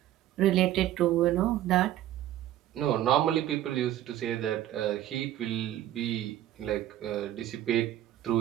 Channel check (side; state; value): left; quieter; 13.0 dB